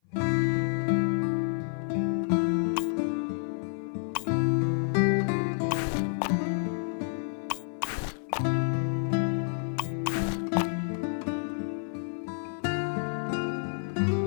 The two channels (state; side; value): silent; right; 57 dB below the other